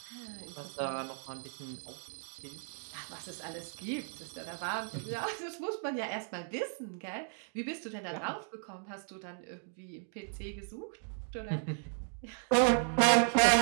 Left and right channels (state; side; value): silent; left; 54 dB below the other